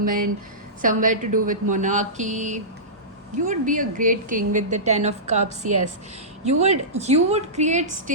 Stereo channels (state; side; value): normal; both; correlation -0.19